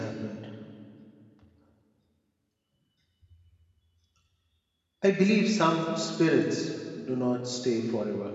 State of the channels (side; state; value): both; identical; correlation 1.00